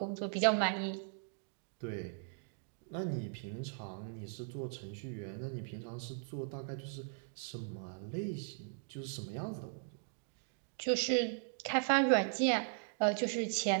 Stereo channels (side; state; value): left; silent; digital silence